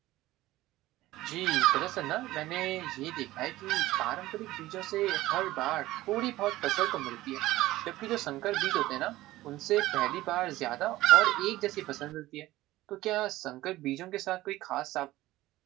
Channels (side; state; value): left; quieter; 16.8 dB